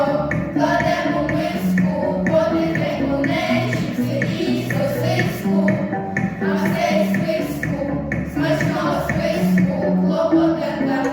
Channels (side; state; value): both; identical; correlation 1.00